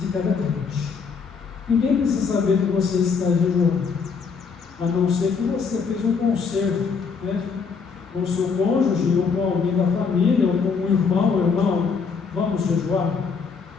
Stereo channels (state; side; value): quieter; right; 5.5 dB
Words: cada crente. Ninguém precisa saber que você está jejuando, a não ser que você fez um concerto, né, com o seu cônjuge, ou com alguém da família, ou com um irmão, vamos jejuar?